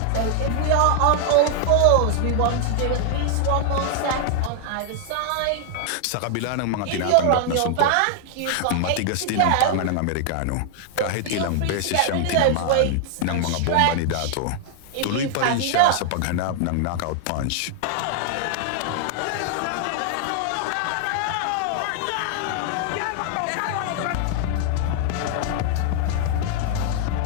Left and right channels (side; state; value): both; different; correlation 0.00